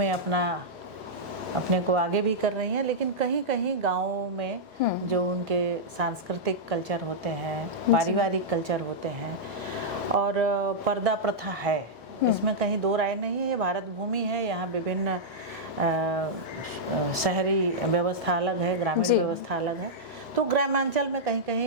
अपने को आगे भी कर रही हैं, लेकिन कहीं कहीं गाँवों में जो उनके सांस्कृतिक कल्चर होते हैं, पारिवारिक कल्चर होते हैं और पर्दा प्रथा है, इसमें कहीं दो राय नहीं है। ये भारत भूमि है, यहाँ विभिन्न शहरी व्यवस्था अलग है, ग्रामीण व्यवस्था अलग है, तो ग्रामांचल में कहीं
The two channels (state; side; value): normal; both; correlation -0.09